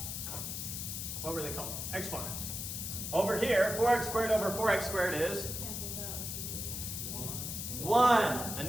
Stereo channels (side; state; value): left; noise; hiss, 5 dB below the sound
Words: were they called? Exponents. Over here, 4x squared over 4x squared is? Cancels out. It's just 1. A